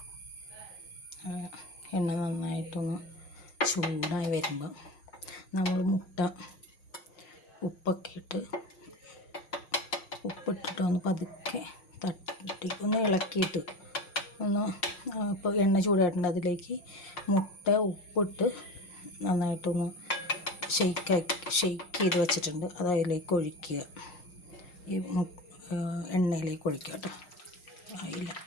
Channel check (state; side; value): late; right; 6.5 ms